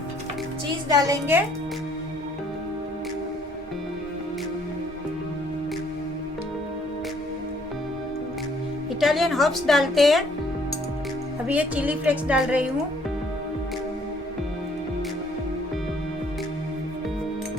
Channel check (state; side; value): normal; both; correlation 0.63